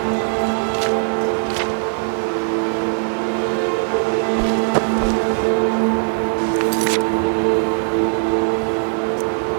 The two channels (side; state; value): left; silent; 64 dB below the other